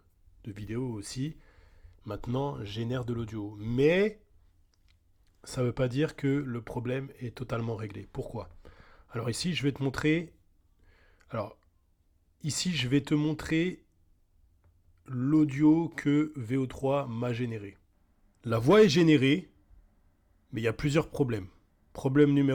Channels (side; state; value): both; identical; correlation 1.00